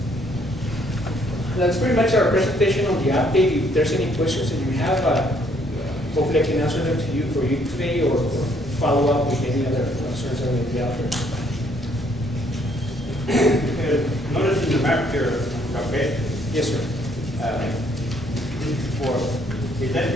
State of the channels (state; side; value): normal; both; correlation 0.66